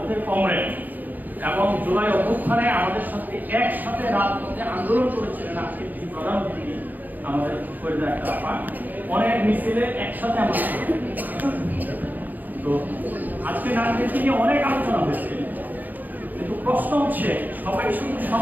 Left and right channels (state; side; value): late; left; 0.084 ms